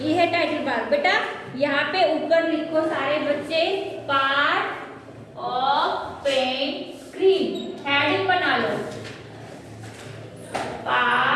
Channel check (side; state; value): both; identical; correlation 1.00